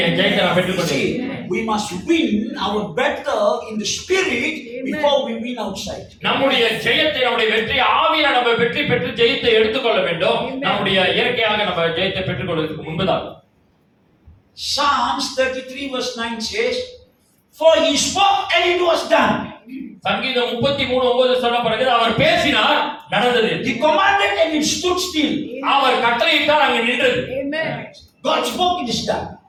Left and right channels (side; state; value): both; identical; correlation 1.00